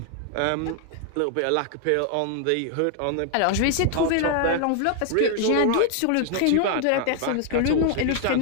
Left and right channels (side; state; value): both; different; correlation 0.00